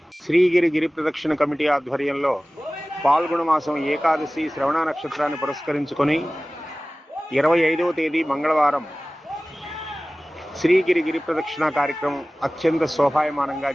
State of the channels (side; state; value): both; normal; correlation 0.97